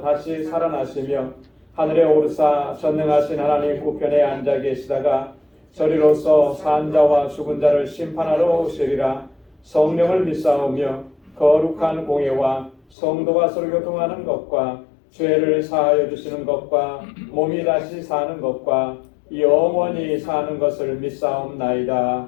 살아나시며 하늘에 오르사 전능하신 하나님 우편에 앉아 계시다가 저리로서 산 자와 죽은 자를 심판하러 오시리라. 성령을 믿사오며 거룩한 공예와 성도가 서로 교통하는 것과 죄를 사하여 주시는 것과 몸이 다시 사는 것과 영원히 사는 것을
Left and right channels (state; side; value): drops out; right; at 12.8 s